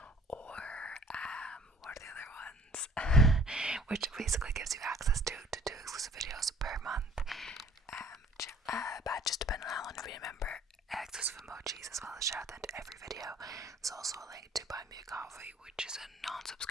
or what are the other ones? Which basically gives you access to two exclusive videos per month. Badges depending on how long you've been a member, exclusive emojis, as well as shout out to every video. There's also a link to Buy Me a Coffee, which is a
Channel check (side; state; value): both; normal; correlation 0.53